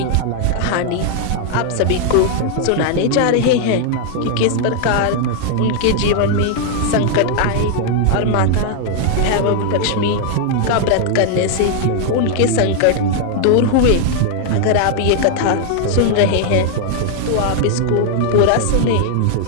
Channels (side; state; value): both; different; correlation 0.00